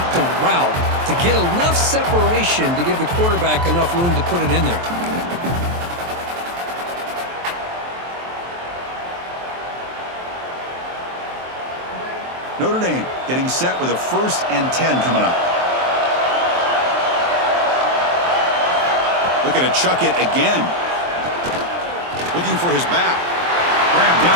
the route to get enough separation to give the quarterback enough room to put it in there. Notre Dame getting set with a 1st and 10 coming up. Looking to chuck it again. Looking for his back. Grab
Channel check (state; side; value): late; left; 23 ms